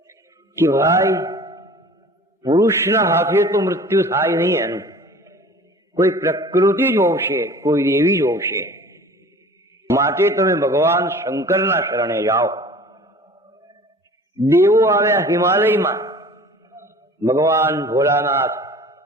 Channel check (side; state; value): both; normal; correlation 0.44